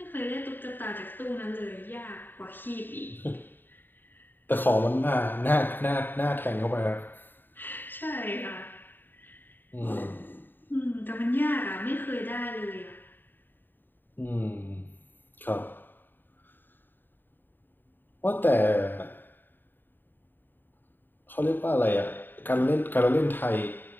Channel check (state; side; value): late; right; 0.093 ms